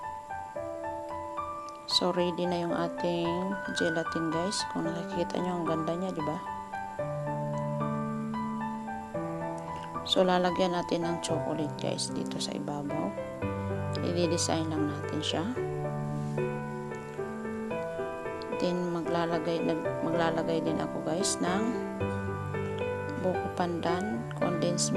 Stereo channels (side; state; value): both; identical; correlation 1.00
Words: So, ready na yung ating gelatin, guys. Kung nakikita nyo, ang ganda niya, di ba? So, lalagyan natin ng chocolate, guys, dito sa ibabaw. I-design lang natin siya. Then, maglalagay din ako, guys, ng buko pandan, condensed